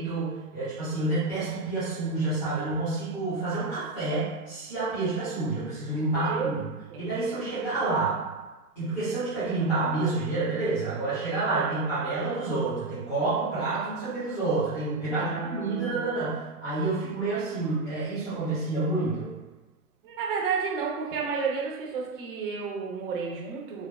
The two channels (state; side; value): quieter; left; 3.0 dB